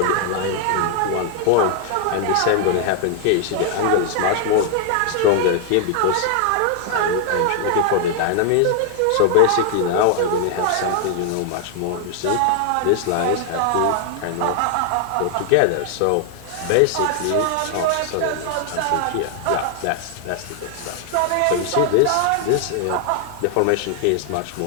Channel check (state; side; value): different; both; correlation 0.00